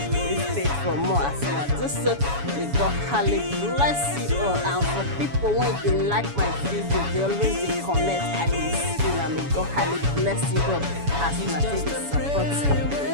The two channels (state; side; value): late; left; 7.1 ms